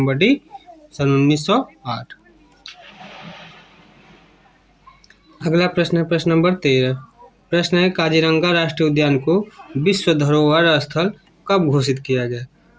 डी, सन 1908। अगला प्रश्न है प्रश्न नंबर 13। प्रश्न है काजीरंगा राष्ट्रीय उद्यान को विश्व धरोहर स्थल कब घोषित किया गया।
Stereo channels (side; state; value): both; identical; correlation 1.00